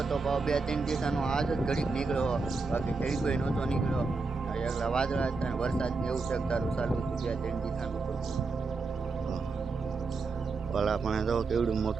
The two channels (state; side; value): quieter; left; 4.0 dB